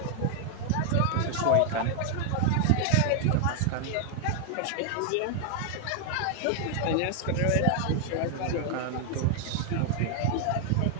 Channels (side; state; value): both; different; correlation 0.00